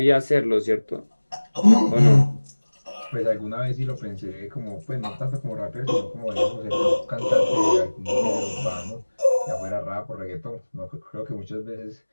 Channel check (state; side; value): inverted; both; correlation -1.00